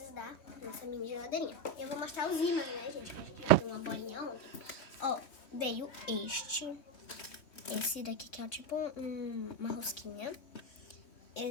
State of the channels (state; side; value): late; right; 3.6 ms